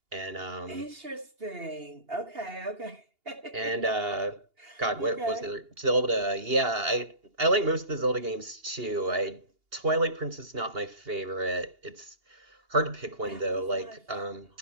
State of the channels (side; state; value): left; late; 2.8 ms